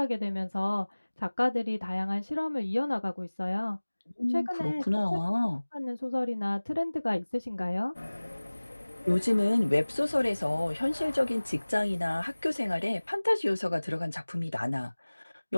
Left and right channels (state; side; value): inverted; both; correlation -1.00